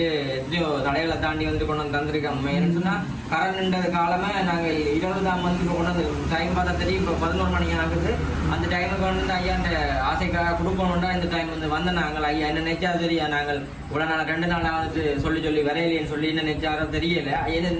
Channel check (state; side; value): identical; both; correlation 1.00